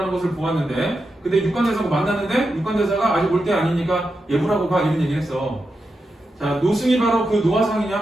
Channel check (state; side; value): normal; both; correlation 0.88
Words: 것을 보았는데, 근데 육관대사하고 만났는데 육관대사가 아직 올 때 아니니까 예불하고 가 이런 얘기를 했어. 자, 노승이 바로 그